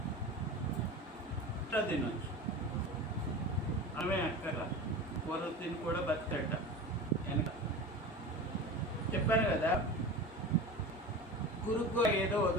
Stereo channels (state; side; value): normal; both; correlation 0.31